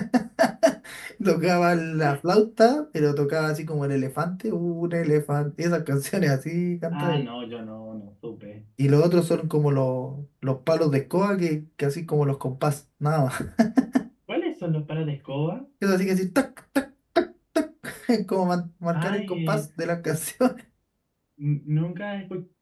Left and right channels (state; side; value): identical; both; correlation 1.00